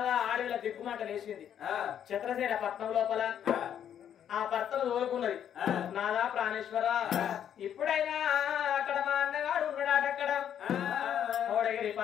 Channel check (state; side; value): quieter; right; 9.4 dB